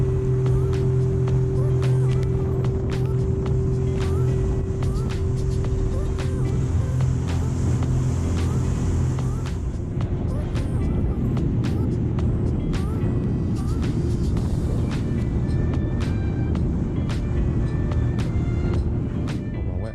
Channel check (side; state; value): both; identical; correlation 1.00